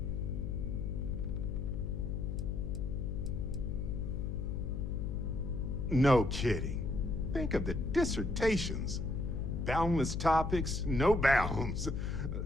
No kidding. Think of the dissertations. Boundless topics, no bounds.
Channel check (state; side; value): noise; left; hum, 2 dB below the sound